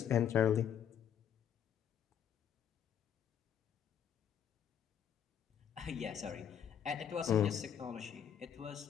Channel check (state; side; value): quieter; right; 8.8 dB